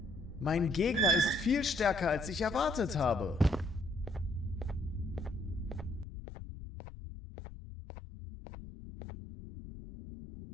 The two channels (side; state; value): right; drops out; at 6.1 s